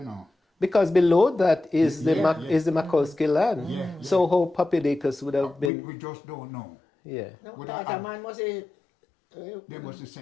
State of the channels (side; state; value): right; drops out; at 5.7 s